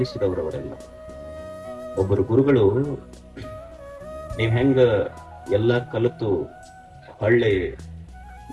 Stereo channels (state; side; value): identical; both; correlation 1.00